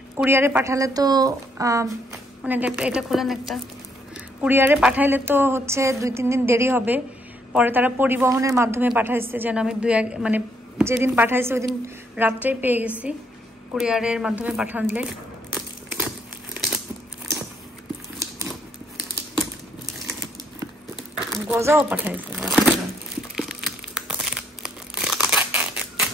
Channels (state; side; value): normal; both; correlation 0.71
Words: কুরিয়ারে পাঠালে তো মানে এটা খোলেন একটা, কুরিয়ারে পাঠাইলে তো হচ্ছে 2-3 দিন দেরি হবে। পরে তারা পরিবহনের মাধ্যমে পাঠাইছে, যেন আমি মানে যেদিন পাঠাইছে ওই দিন রাত্রেই পেয়ে গেছি কুরিয়ারের মাধ্যমে পাঠানলে। গজাও পাঠাইছে।